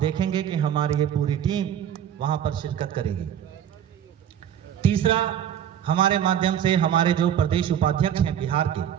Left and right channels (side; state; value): left; quieter; 9.7 dB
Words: कि हमारी ये पूरी टीम वहां पर शिरकत करेगी। तीसरा, हमारे माध्यम से हमारे जो प्रदेश उपाध्यक्ष हैं बिहार के,